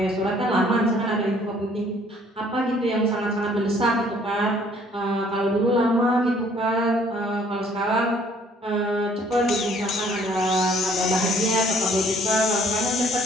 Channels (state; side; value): normal; both; correlation 0.60